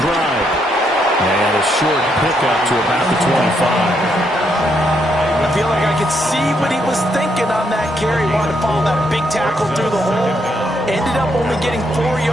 And a short pickup to about the 25. I feel like I could see what he was thinking on that carry. He wanted to follow that big tackle through the hole. Ended up only getting 4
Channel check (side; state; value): both; normal; correlation 0.76